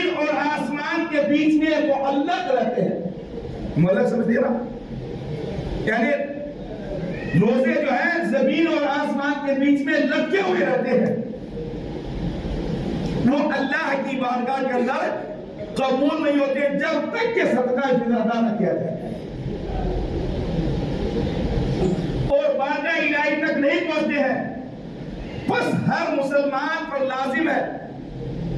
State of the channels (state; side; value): identical; both; correlation 1.00